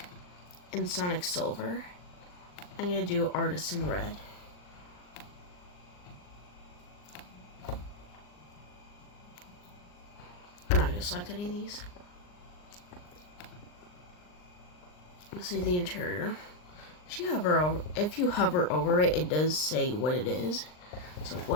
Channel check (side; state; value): right; late; 39 ms